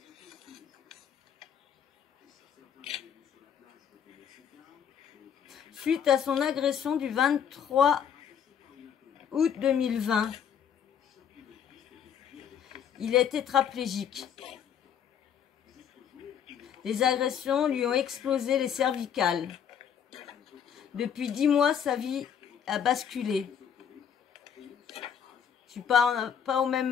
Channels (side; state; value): right; quieter; 8.3 dB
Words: Suite à son agression du 23 août 2020, il est tétraplégique. Les agressions lui ont explosé les cervicales. Depuis 10 mois, sa vie a basculé. Je suis pas au